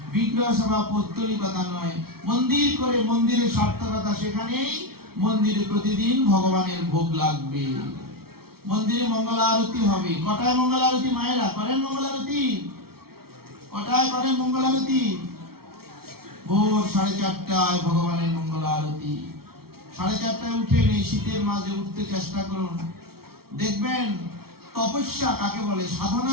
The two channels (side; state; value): left; late; 0.94 ms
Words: বিগ্রহ সেবা পৌত্তলিকতা নয়। মন্দির করে মন্দিরের সার্থকতা সেখানেই, মন্দিরে প্রতিদিন ভগবানের ভোগ লাগবে, মন্দিরে মঙ্গল আরতি হবে। কটায় মঙ্গল আরতি মায়েরা করেন? মঙ্গল আরতি কটায় করেন? মঙ্গল আরতি ভোর 4:30টায় ভগবানের মঙ্গল আরতি। 4:30টায় উঠে এই শীতের মাঝে উঠতে চেষ্টা করুন। দেখবেন তপস্যা কাকে বলে,